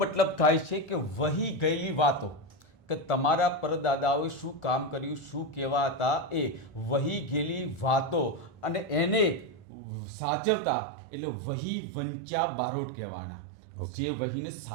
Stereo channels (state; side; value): drops out; left; at 9.7 s